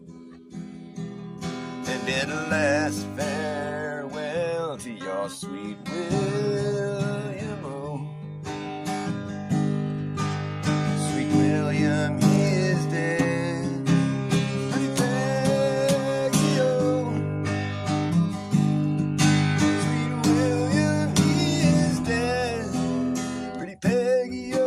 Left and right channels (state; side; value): identical; both; correlation 1.00